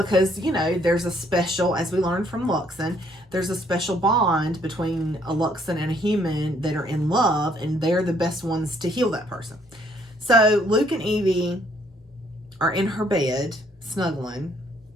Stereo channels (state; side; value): normal; both; correlation 0.66